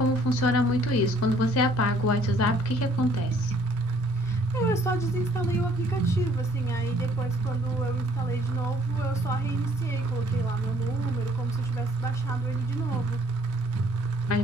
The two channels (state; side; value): normal; both; correlation 0.61